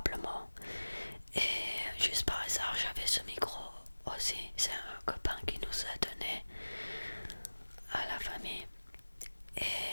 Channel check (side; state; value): both; inverted; correlation -1.00